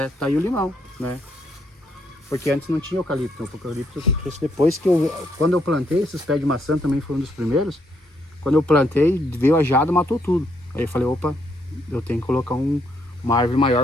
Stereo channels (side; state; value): both; normal; correlation 0.74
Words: Tá aí o limão, né? Porque antes não tinha eucalipto. O eucalipto eu trouxe depois que quando eu plantei, esses pés de maçã também foram um dos primeiros. Quando eu plantei, veio a geada e matou tudo. Aí eu falei, opa, eu tenho que colocar uma árvore